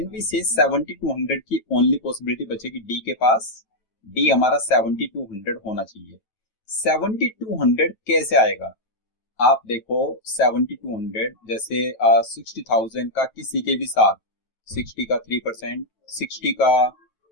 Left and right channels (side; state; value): right; late; 9.1 ms